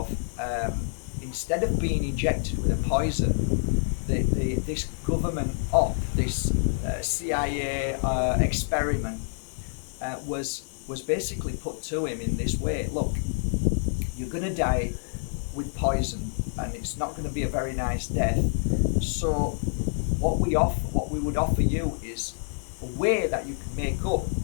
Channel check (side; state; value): right; silent; 60 dB below the other